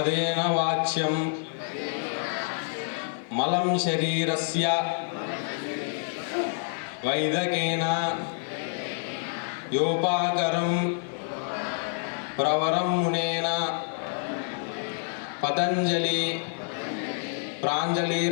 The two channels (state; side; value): silent; right; digital silence